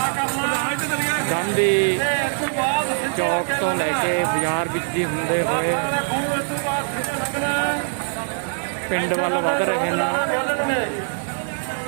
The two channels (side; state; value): left; silent; digital silence